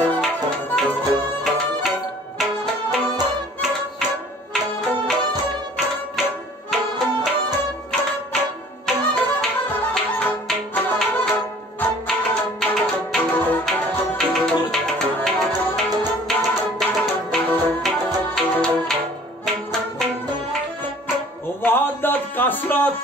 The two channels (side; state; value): both; normal; correlation 0.51